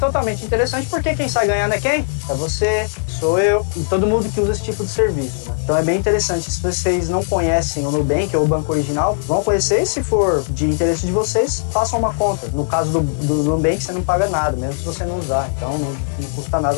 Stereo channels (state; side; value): silent; right; 57 dB below the other